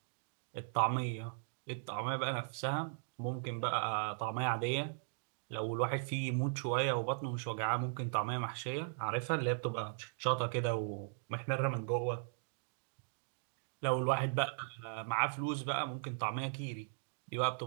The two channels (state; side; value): silent; left; digital silence